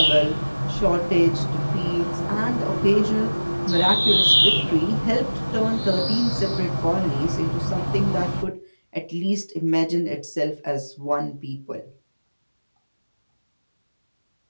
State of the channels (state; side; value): inverted; both; correlation -1.00